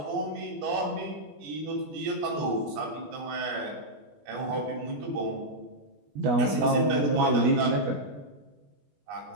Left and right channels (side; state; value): left; late; 21 ms